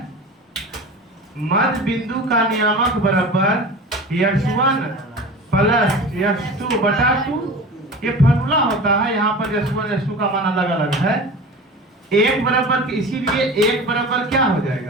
मध्य बिंदु का नियामक बराबर x1 प्लस x2/2, ये फॉर्मूला होता है। यहाँ पर x1 x2 का मान अलग अलग है। एक बराबर, इसीलिए एक बराबर क्या हो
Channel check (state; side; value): normal; both; correlation 0.34